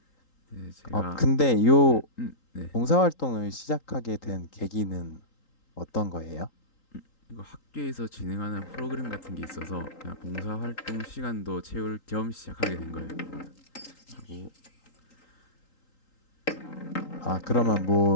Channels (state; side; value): late; right; 3.8 ms